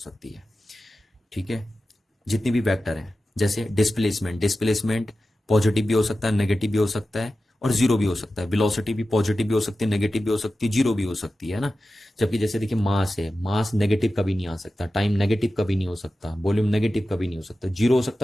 है। ठीक है, जितनी भी वेक्टर है, जैसे डिस्प्लेसमेंट पॉजिटिव भी हो सकता है, नेगेटिव भी हो सकता है और जीरो भी हो सकता है। वेलोसिटी भी पॉजिटिव भी हो सकती है, नेगेटिव भी हो सकती है, जीरो भी हो सकती है ना। जबकि जैसे देखिए मास है, मास नेगेटिव कभी नहीं आ सकता, टाइम नेगेटिव कभी नहीं हो सकता, वॉल्यूम नेगेटिव कभी नहीं हो सकता। जीरो हो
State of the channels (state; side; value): normal; both; correlation 0.93